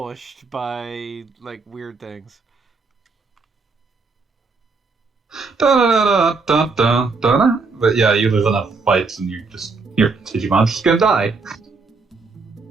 by, like, weird things. But yeah, you lose enough fights and your Digimon's just gonna die.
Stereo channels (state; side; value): quieter; left; 4.2 dB